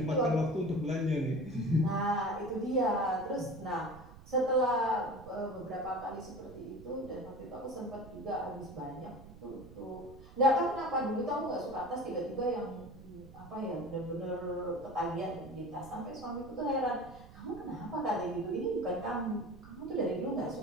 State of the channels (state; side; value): noise; right; rumble, 18 dB below the sound